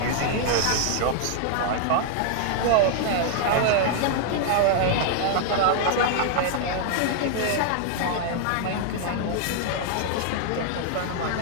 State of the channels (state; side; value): different; both; correlation 0.00